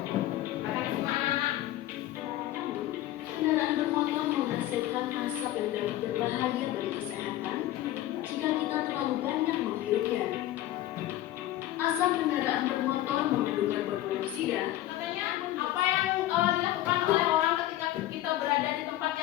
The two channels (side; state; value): right; quieter; 14.4 dB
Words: Kendaraan bermotor menghasilkan asap yang dapat berbahaya bagi kesehatan jika kita terlalu banyak menghirupnya. Asap kendaraan bermotor mengandung karbon monoksida. Katanya apa yang dilakukan oleh orang ketika kita berada di tempat